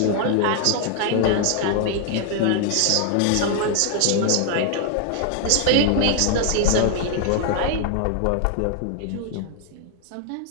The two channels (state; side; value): different; both; correlation 0.00